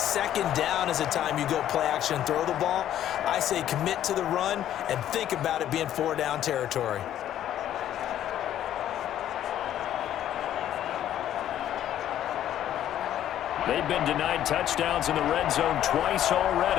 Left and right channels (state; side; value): quieter; right; 11.5 dB